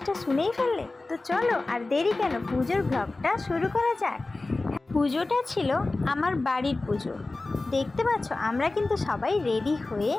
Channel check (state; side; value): quieter; right; 3.2 dB